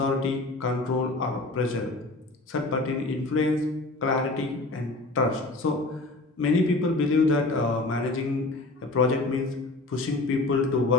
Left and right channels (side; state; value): right; quieter; 3.0 dB